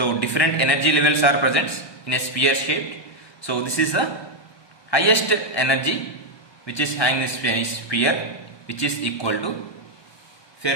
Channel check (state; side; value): late; right; 1.2 ms